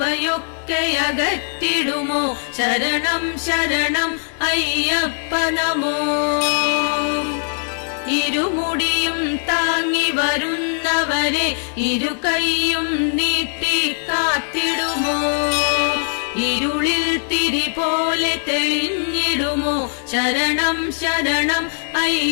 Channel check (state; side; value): silent; right; digital silence